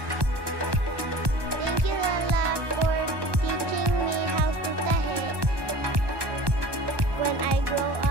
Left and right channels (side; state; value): left; late; 1.2 ms